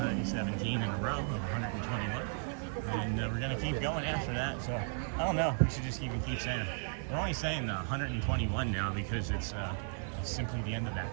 in a row of 121, and we're gonna keep going after that. So I don't know. We should just even keep saying it. We're only saying the 121 now because it's simply the end of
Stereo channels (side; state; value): left; silent; 54 dB below the other